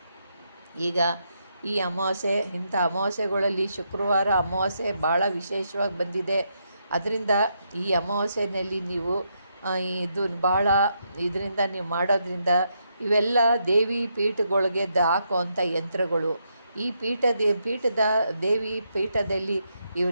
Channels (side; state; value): both; inverted; correlation -0.79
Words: ಈಗ ಈ ಅಮಾವಾಸ್ಯೆ, ಇಂಥ ಅಮಾವಾಸ್ಯೆಗಳಲ್ಲಿ ಶುಕ್ರವಾರ ಅಮಾವಾಸ್ಯೆ ಭಾಳ ವಿಶೇಷವಾಗಿ ಬಂದಿದೆ. ಅದರಿಂದ ಈ ಅಮಾವಾಸ್ಯೆಯಲ್ಲಿ ನೀವು ಇದರಿಂದ ನೀವು ಮಾಡೋದ್ರಿಂದ ಇವೆಲ್ಲ ದೇವಿ ಪೀಠಗಳಿಗೆ ಹಾಕುವಂಥ ಯಂತ್ರಗಳು. ಈ ದೇವಿ ಪೀಠದಲ್ಲಿ